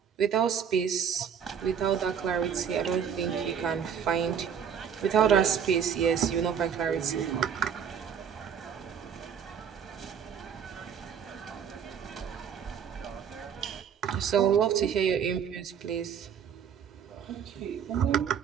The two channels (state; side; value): quieter; left; 7.8 dB